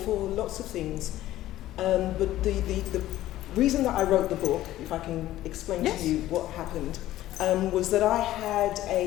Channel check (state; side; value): quieter; right; 14.5 dB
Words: lots of things. But the reason that I wrote the book, if I can explain Yes. to you what happened, was that I had